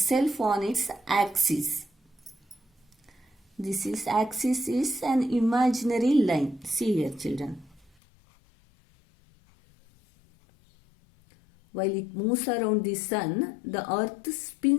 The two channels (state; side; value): drops out; right; at 7.9 s